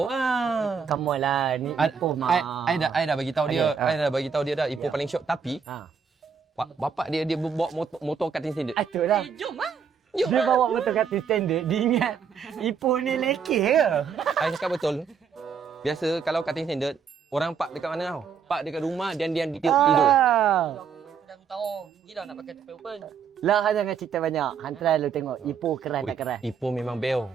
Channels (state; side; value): quieter; left; 6.5 dB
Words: ah. Come on lah, ni Ipoh mah. I dah bagi tahu dia. Okay, I dah bagi tahu dia dah Ipoh paling syok, tapi bapak dia bawa motor cutting standard. Itulah. Jom ah. Jom. Dia bawa motor kat standard, dia ingat Ipoh ni lekeh ke? I cakap betul. Biasa kalau cutting standard, orang park dekat mana tau? Park dekat rumah dan dia tidur. Dah aku tahu. Gila nak pakai tepel open. Lah, jangan cerita banyak. Hantar lu tengok Ipoh keras tak keras. Ipoh memang beo.